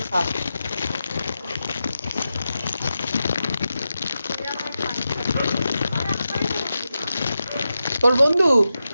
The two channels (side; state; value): both; inverted; correlation -0.90